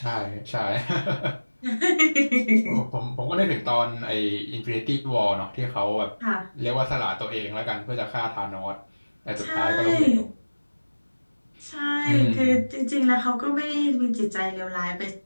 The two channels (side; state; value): both; inverted; correlation -1.00